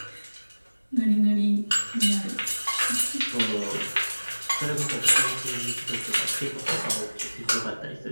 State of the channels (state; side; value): inverted; both; correlation -1.00